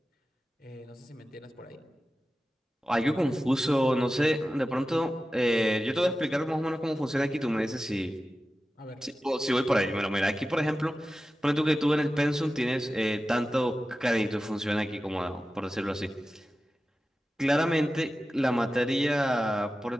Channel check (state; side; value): normal; both; correlation 0.94